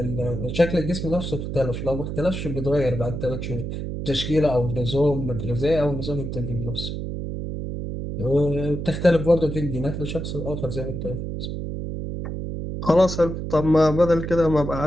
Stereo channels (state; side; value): noise; right; hum, 5 dB below the sound